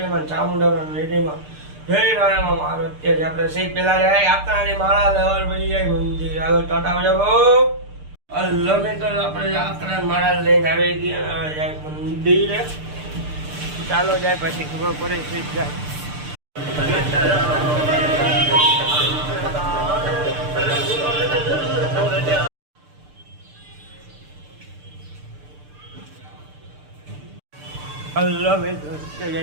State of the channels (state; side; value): late; left; 6.7 ms